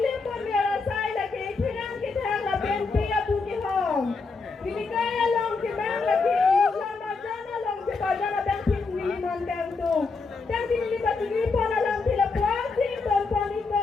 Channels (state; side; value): quieter; right; 4.3 dB